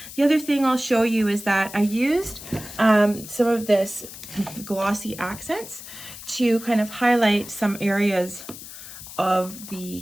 The other thing I'll show you is that I used some of this glossy accents to kind of highlight some areas of the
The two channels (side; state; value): left; noise; hiss, 14 dB below the sound